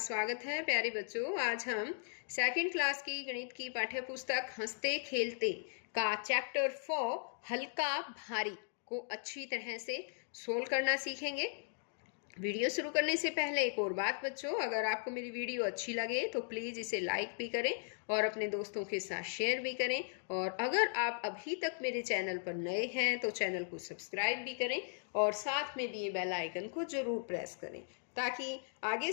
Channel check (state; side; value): silent; right; digital silence